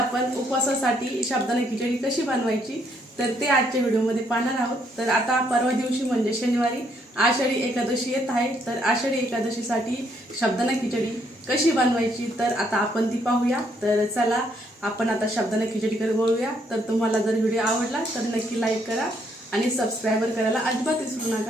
उपवासासाठी साबुदाणा खिचडी कशी बनवायची तर ते आजच्या व्हिडिओमध्ये पाहणार आहोत। तर आता परवा दिवशी म्हणजे शनिवारी आषाढी एकादशी येत आहे। तर आषाढी एकादशीसाठी साबुदाणा खिचडी कशी बनवायची तर आता आपण ती पाहूया। तर चला आपण आता साबुदाणा खिचडीकडे वळूया। तर तुम्हाला जर व्हिडिओ आवडला तर नक्की लाईक करा आणि सबस्क्राइबर करायला अजिबात विसरू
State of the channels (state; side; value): normal; both; correlation 0.71